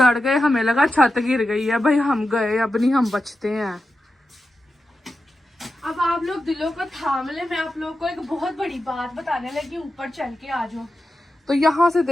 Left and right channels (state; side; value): normal; both; correlation 0.90